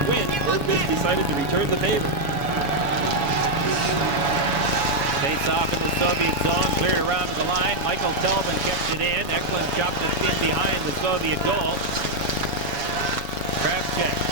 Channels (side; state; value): left; late; 7.1 ms